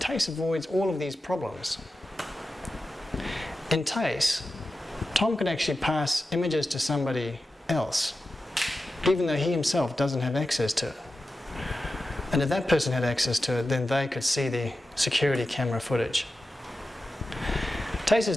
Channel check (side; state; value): both; normal; correlation 0.92